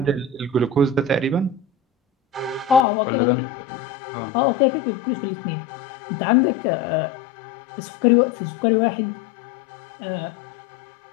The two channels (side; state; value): right; drops out; at 2.9 s